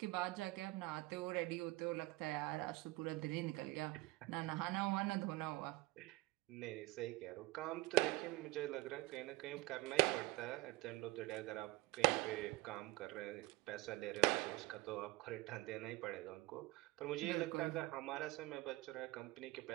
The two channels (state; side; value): quieter; left; 21.3 dB